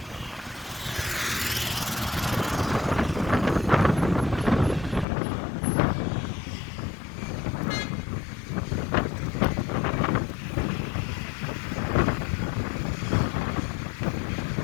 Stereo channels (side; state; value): right; drops out; at 5.1 s